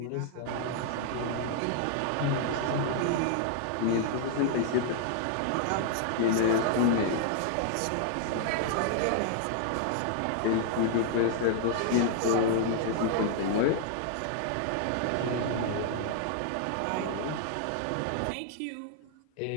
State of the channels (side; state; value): both; different; correlation 0.00